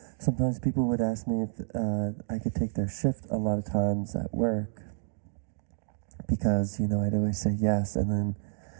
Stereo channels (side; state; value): left; silent; digital silence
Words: Sometimes people would ask me if I could take their shift a lot of times at work because, I'd always say yes, and then